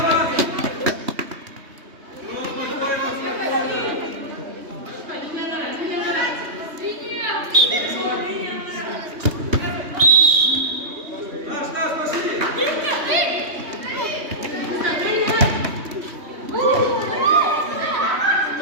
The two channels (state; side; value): late; left; 3.2 ms